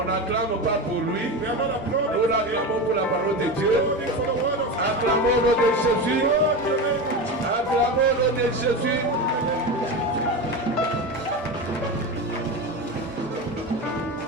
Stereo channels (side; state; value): both; normal; correlation 0.22